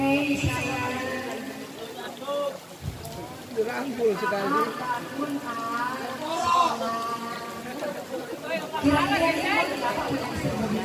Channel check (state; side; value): identical; both; correlation 1.00